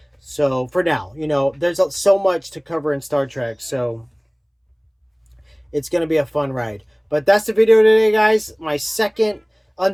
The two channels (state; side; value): identical; both; correlation 1.00